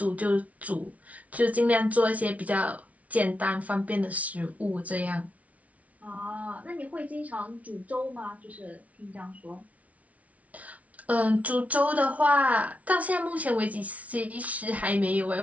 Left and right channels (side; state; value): left; late; 0.068 ms